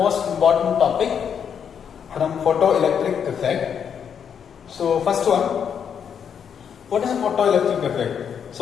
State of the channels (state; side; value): quieter; right; 7.7 dB